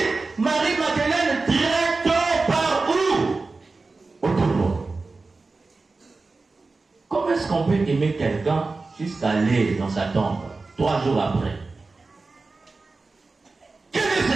Marie-Madeleine direct par où? Au tombeau. Comment est-ce qu'on peut aimer quelqu'un jusqu'à aller dans sa tombe 3 jours après? Quel est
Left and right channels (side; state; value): left; quieter; 3.8 dB